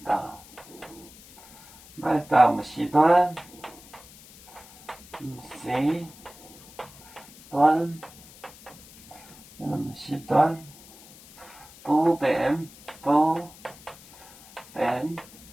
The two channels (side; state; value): left; noise; hiss, 21 dB below the sound